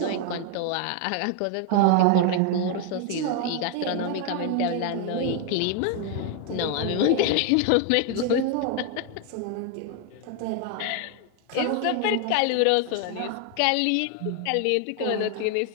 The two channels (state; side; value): different; both; correlation 0.01